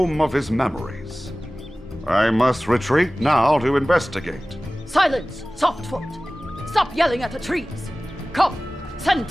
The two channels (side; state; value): both; normal; correlation 0.98